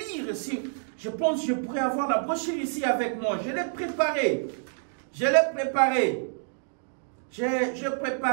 ici. Je pense que je pourrais avoir la brochure ici avec moi. Je l'ai préparée. J'ai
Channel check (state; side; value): silent; left; digital silence